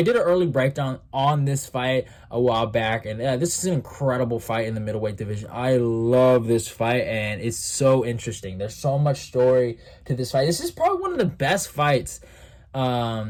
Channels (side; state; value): both; identical; correlation 1.00